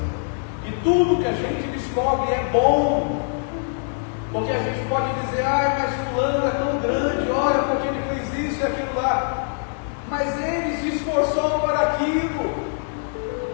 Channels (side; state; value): right; silent; digital silence